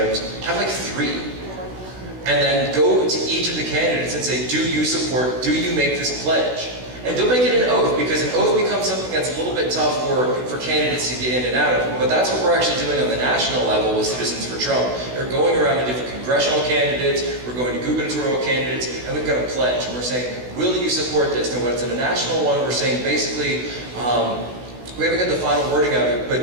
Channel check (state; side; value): late; left; 16 ms